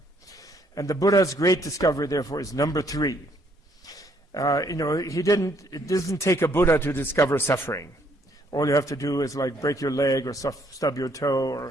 And the Buddha's great discovery, therefore, is number 3. It doesn't take a Buddha to discover suffering. All you have to do is break your leg or stub your toe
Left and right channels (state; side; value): normal; both; correlation 0.68